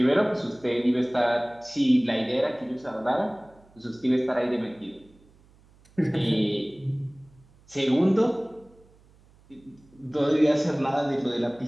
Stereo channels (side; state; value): right; noise; hum, 29 dB below the sound